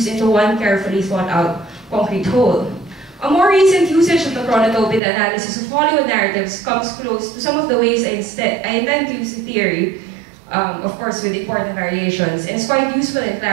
into one carefully thought out concrete whole. A more recent usage of the chronotope in the analysis of Hollywood narratives comes close to some of the ways I intend to use the theory, of course with important variations, and it's quite useful in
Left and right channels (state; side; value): drops out; left; at 5.0 s